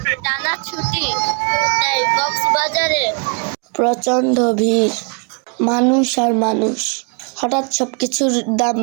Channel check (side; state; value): left; quieter; 36.0 dB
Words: প্রচণ্ড ভিড়, মানুষ আর মানুষ। হঠাৎ সবকিছুর দাম